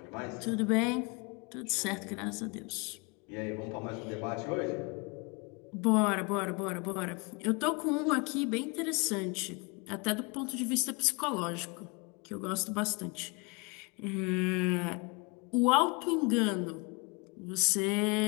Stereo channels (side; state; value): right; quieter; 29.9 dB